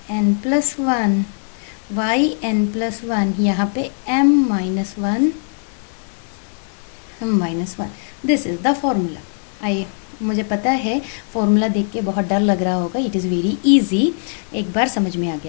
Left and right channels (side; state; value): right; silent; digital silence